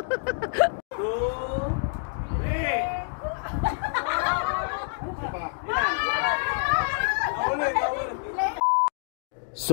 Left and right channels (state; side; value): silent; right; digital silence